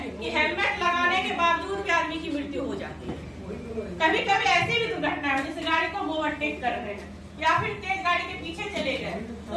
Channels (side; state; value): both; identical; correlation 1.00